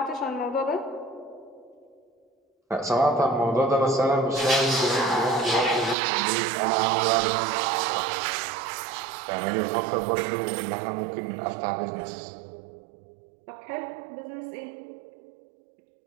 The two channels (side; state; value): left; drops out; at 6.0 s